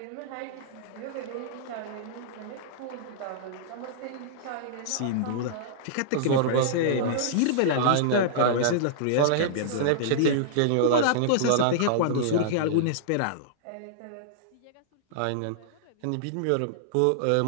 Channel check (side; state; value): both; different; correlation -0.02